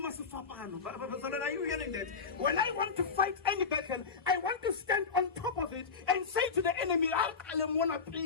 you hearing that? When I want to fight any battle, I want to stand on top of it and say to the enemy,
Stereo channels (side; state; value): right; quieter; 5.3 dB